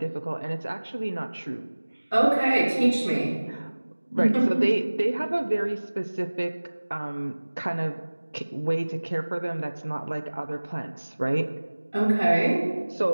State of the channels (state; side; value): inverted; both; correlation -1.00